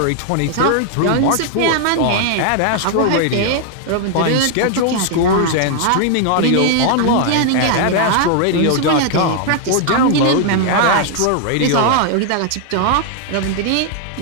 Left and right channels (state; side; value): different; both; correlation 0.00